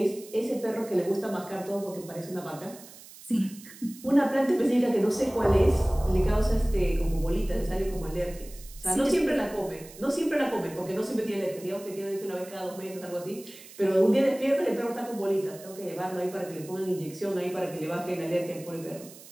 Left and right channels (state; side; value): noise; right; hiss, 19 dB below the sound